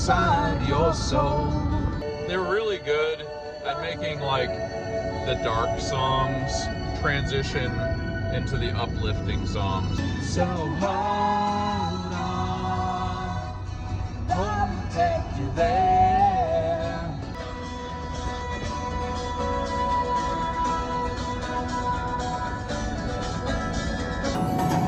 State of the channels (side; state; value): both; identical; correlation 1.00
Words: your soul. They're really good at making like the dark songs transition into the uplifting songs. So hold on, I'll take you there.